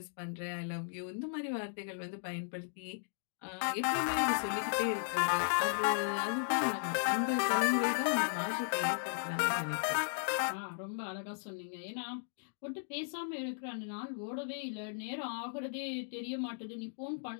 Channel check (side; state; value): right; silent; digital silence